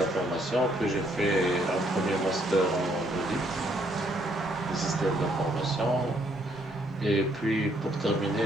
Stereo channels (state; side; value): normal; both; correlation 0.70